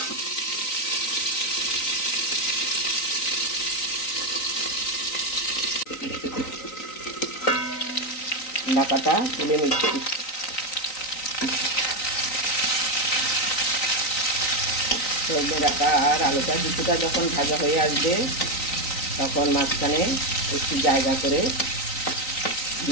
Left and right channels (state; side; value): late; right; 3.9 ms